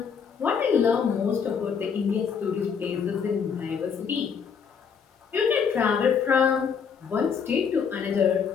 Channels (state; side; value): quieter; right; 6.6 dB